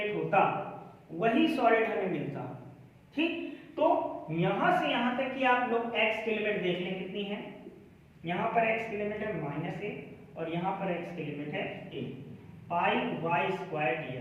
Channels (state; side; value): identical; both; correlation 1.00